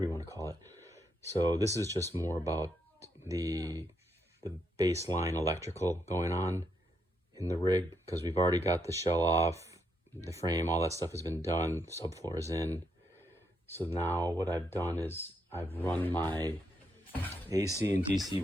you want to call it. So this is just more about the baseline electrical going on in the rig, because we've already got the shell off, the frame, all that stuff has been done, subfloor is in. So now what I've done is I've run my AC and DC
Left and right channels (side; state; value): both; normal; correlation 0.78